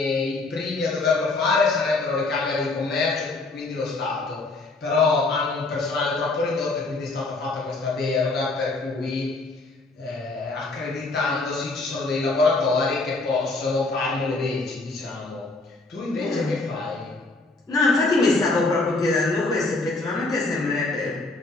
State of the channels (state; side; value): quieter; right; 3.3 dB